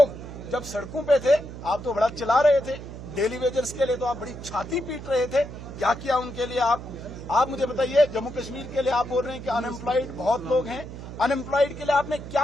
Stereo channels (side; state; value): right; noise; hum, 12 dB below the sound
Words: जब सड़कों पे थे, आप तो बड़ा चिल्ला रहे थे। डेली वेजर्स के लिए तो आप बड़ी छाती पीट रहे थे। क्या किया उनके लिए आप मुझे बताइए। जम्मू कश्मीर के लिए आप बोल रहे हैं कि अनएम्प्लॉयड बहुत लोग हैं, अनएम्प्लॉयड के लिए आपने